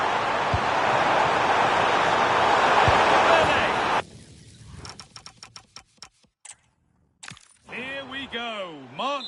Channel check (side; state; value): both; identical; correlation 1.00